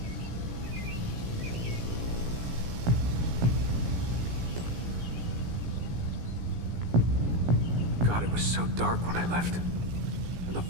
God, it was so dark when I left. And the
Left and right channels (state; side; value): late; left; 17 ms